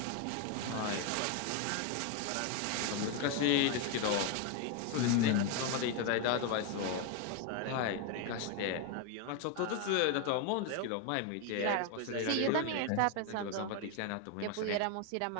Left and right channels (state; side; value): different; both; correlation 0.01